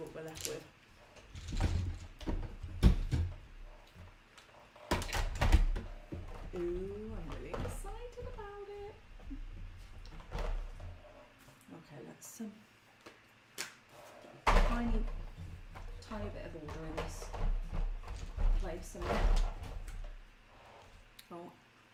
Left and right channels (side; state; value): both; identical; correlation 1.00